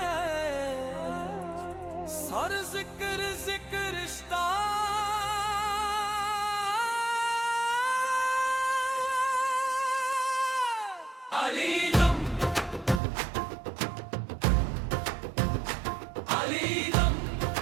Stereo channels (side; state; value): left; drops out; at 13.0 s